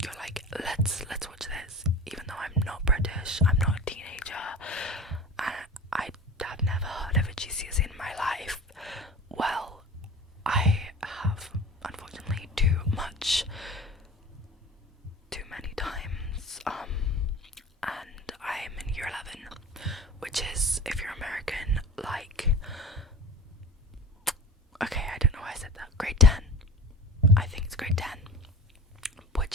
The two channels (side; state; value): both; normal; correlation 0.37